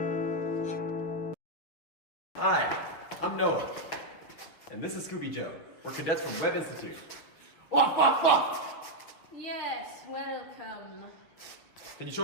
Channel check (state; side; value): late; right; 6.4 ms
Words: Hi, I'm Noah, and this is Scooby Joe. We're cadets from Webb Institute. Yes, welcome. Can you show